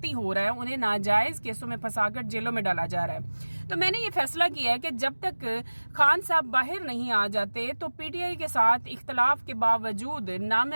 ہو رہا ہے، انہیں ناجائز کیسوں میں پھنسا کر جیلوں میں ڈالا جا رہا ہے۔ تو میں نے یہ فیصلہ کیا ہے کہ جب تک خان صاحب باہر نہیں آ جاتے تو پی ٹی آئی کے ساتھ اختلاف کے باوجود نہ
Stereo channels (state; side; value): inverted; both; correlation -1.00